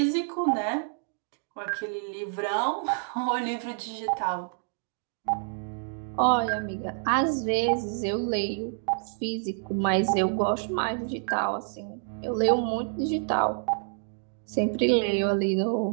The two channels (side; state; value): left; silent; digital silence